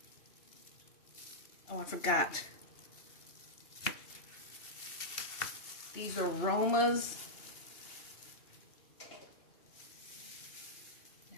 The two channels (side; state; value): right; late; 2.8 ms